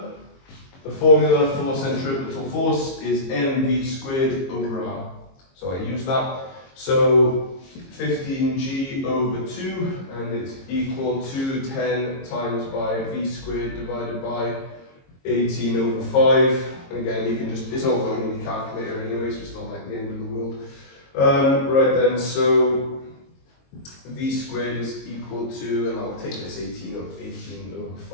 the formula for centripetal force is mv squared over r. So I use that. So 15g over 2, and it's equal to 10 times by v squared divided by 18 over 5. And again, you can just, it's all going in your calculator anyway, so it's not like the end of the world. Right then, so v squared is equal to, and I'll take this 18 over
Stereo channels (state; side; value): late; right; 22 ms